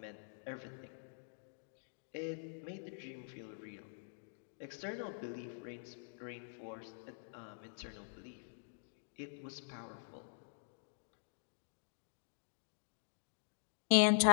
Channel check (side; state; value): right; silent; digital silence